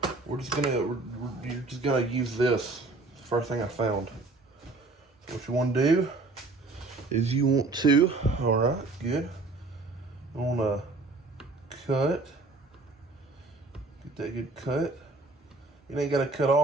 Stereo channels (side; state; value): left; quieter; 3.4 dB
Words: You're just gonna use this. It's the first thing I found. So what you want to do is you want to, alright, good. You want to cut. Get that good cut. You ain't got to cut